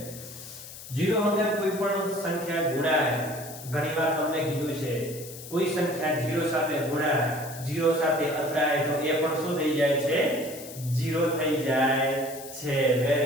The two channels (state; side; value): noise; left; hiss, 14 dB below the sound